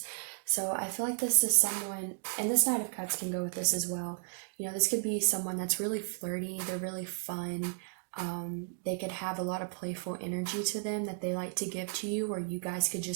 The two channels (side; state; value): left; silent; digital silence